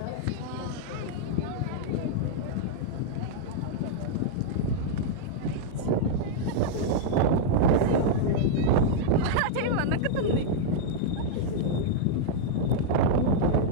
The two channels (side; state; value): both; different; correlation -0.01